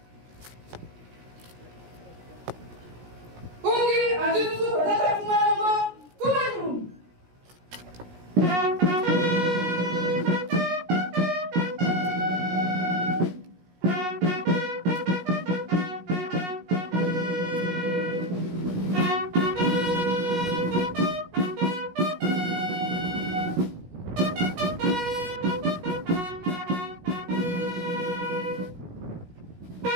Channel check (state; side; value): late; left; 17 ms